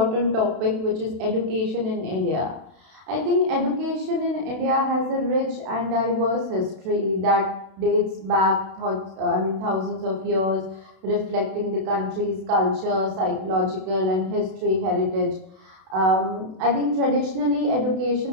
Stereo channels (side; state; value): left; late; 32 ms